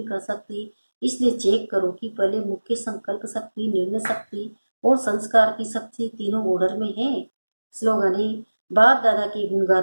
कर सकती। इसलिए चेक करो कि पहले मुख्य संकल्प शक्ति, निर्णय शक्ति और संस्कार की शक्ति तीनों ऑर्डर में है। स्लोगन है, बाप दादा के गुण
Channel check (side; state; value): both; inverted; correlation -1.00